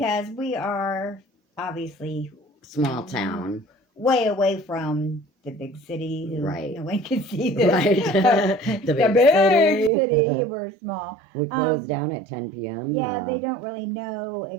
we are obviously small town, way away from the big city. Right. No one can see this. Right. the big city. We're small. We close down at 10 p.m. Yeah, they don't really know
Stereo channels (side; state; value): left; drops out; at 9.9 s